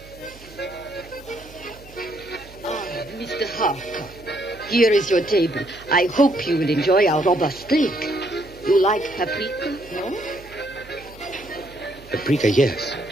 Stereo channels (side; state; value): right; noise; hum, 21 dB below the sound